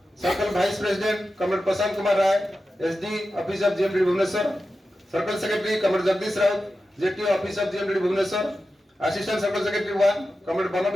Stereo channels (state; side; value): normal; both; correlation 0.92